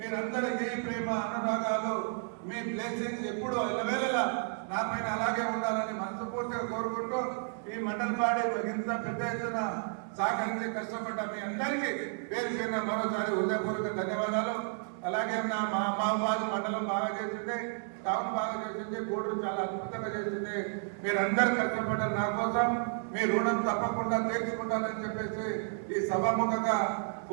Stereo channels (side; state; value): left; silent; 56 dB below the other